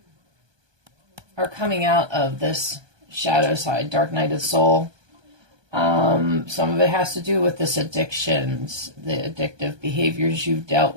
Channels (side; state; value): left; late; 1.2 ms